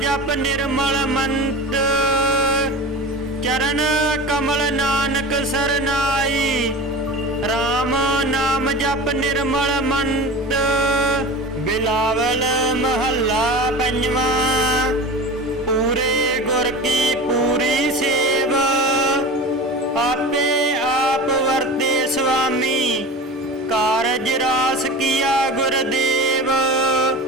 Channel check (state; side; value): normal; both; correlation 0.32